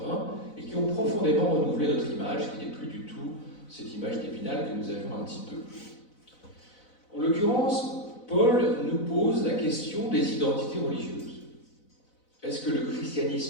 et qui ont profondément renouvelé notre image, qui n'est plus du tout cette image d'Épinal que nous avions un petit peu. En l'occurrence, Paul nous pose la question des identités religieuses. Est-ce que le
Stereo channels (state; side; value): late; right; 4.0 ms